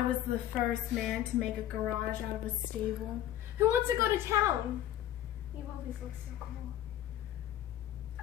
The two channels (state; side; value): quieter; right; 12.1 dB